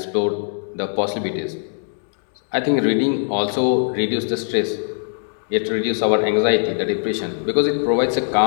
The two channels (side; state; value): right; silent; digital silence